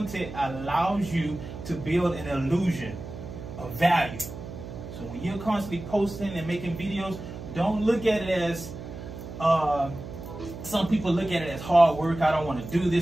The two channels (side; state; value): right; noise; hum, 11 dB below the sound